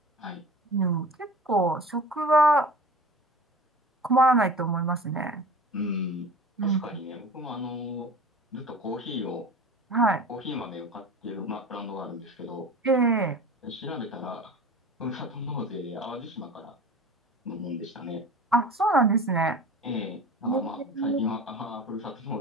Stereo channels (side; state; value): both; normal; correlation 0.37